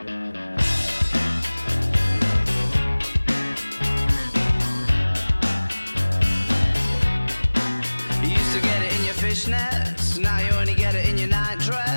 You used to get it in your fishnets, now you only get it in your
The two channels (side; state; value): both; inverted; correlation -1.00